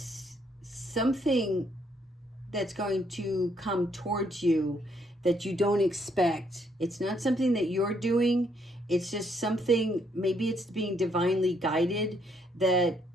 something that's going to come towards you that you don't expect. It's not something that you're doing. It's just something, maybe it's being divinely guided, that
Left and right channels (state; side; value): normal; both; correlation 0.71